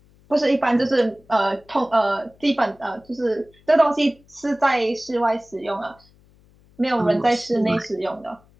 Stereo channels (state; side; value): noise; left; hum, 30 dB below the sound